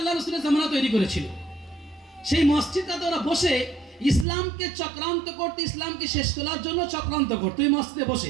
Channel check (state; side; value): drops out; left; at 4.2 s